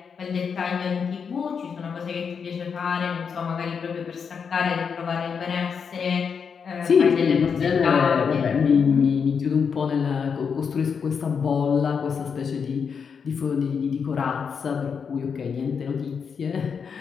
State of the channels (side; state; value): right; quieter; 6.3 dB